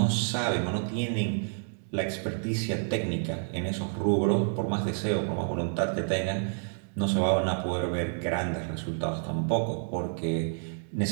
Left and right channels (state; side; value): silent; left; digital silence